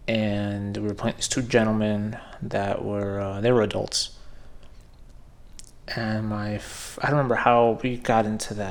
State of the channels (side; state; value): both; identical; correlation 1.00